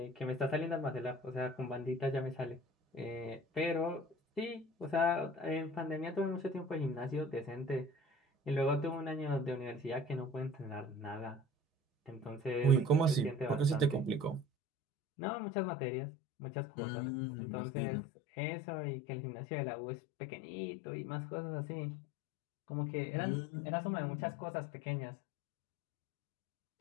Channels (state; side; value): drops out; right; at 14.5 s